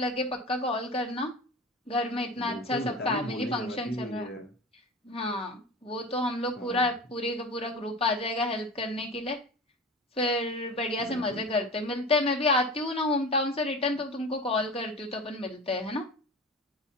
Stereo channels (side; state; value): both; normal; correlation 0.32